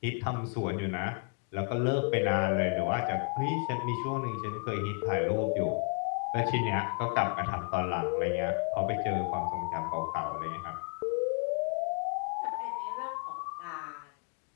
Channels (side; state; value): right; quieter; 37.2 dB